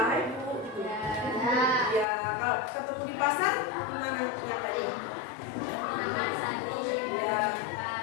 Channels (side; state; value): right; drops out; at 2.1 s